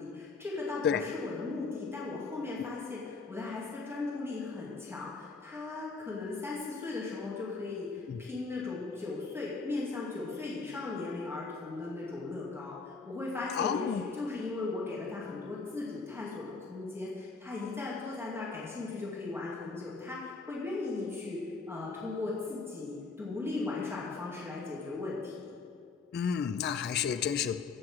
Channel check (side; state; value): right; quieter; 4.3 dB